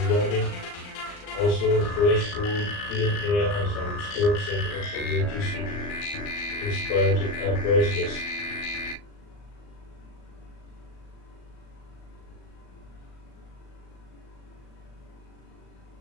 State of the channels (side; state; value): right; late; 39 ms